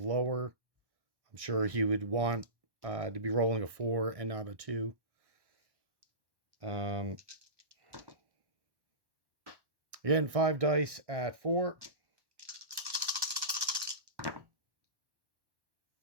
I'm sure he would want to be rolling a 4 and not a 2. Again, 5 dice at 4.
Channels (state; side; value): late; left; 1.1 ms